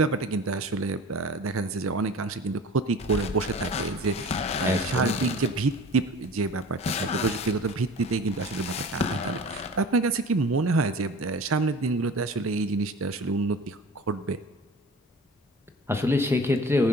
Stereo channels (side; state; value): both; normal; correlation 0.40